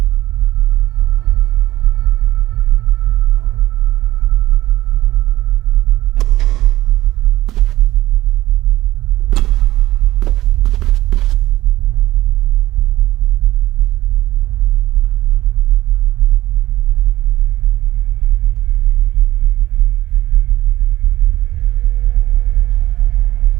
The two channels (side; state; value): left; quieter; 16.1 dB